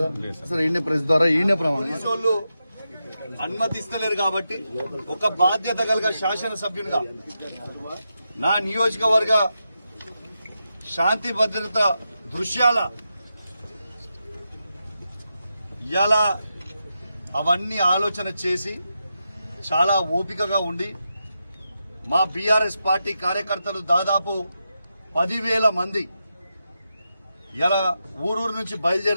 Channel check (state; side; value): inverted; both; correlation -0.87